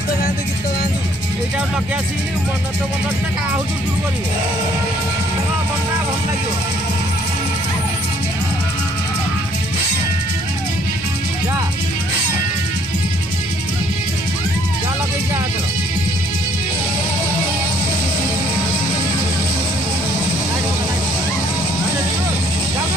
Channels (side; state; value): both; normal; correlation 0.63